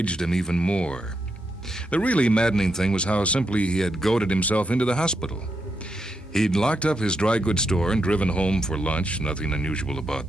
him even more. The really maddening thing was how simply he had goaded himself into the hospital. He'd locked up his dry goods store and driven home for lunch. Nothing unusual about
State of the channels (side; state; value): both; normal; correlation 0.83